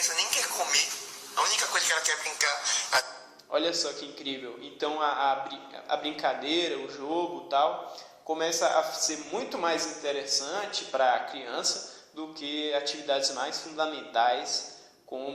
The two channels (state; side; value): identical; both; correlation 1.00